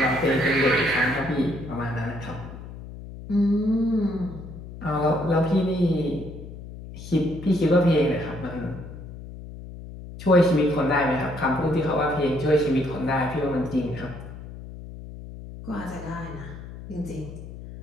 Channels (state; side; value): noise; left; hum, 13 dB below the sound